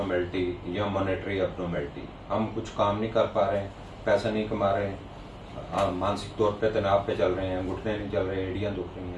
या मॉनेटरी एब्नॉर्मेलिटी। हम कुछ काम नहीं कर पा रहे हैं, पैसा नहीं कमा रहे हैं, मानसिक तौर पे तनाव पे चल रहे हैं, घुटने नहीं चल रहे, एड़ियाँ दुख रही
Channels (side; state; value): both; identical; correlation 1.00